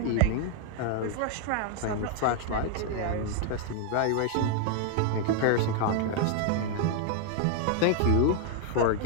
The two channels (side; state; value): both; different; correlation 0.00